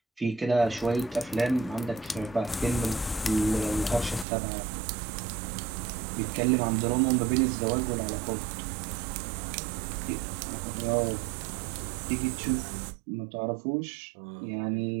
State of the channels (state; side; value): drops out; left; at 4.2 s